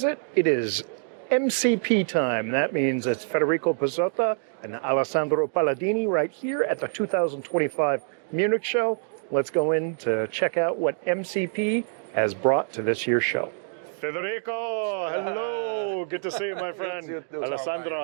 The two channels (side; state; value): left; silent; 61 dB below the other